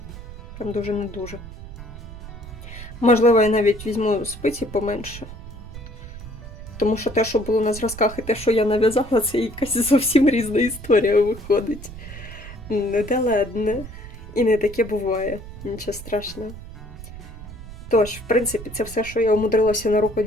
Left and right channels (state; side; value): noise; right; rumble, 13 dB below the sound